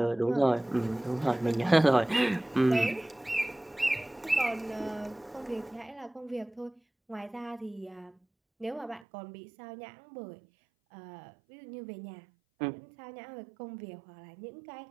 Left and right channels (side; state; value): left; drops out; at 9.1 s